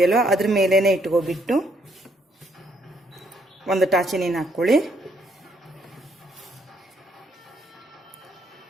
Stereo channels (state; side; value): normal; both; correlation 0.70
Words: ಅದ್ರ ಮೇಲೇನೆ ಇಟ್ಕೊಬಿಟ್ಟು ಒಂದು ಟಾಚೆನಿನ ಹಾಕೊಳ್ಳಿ.